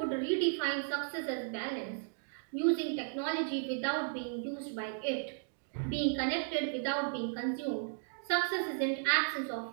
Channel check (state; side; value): silent; left; digital silence